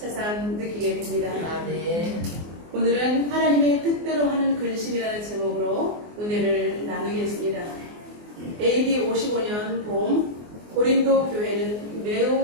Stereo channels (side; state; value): left; late; 24 ms